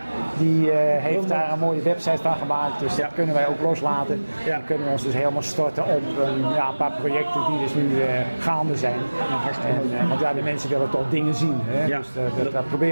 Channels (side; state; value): both; inverted; correlation -1.00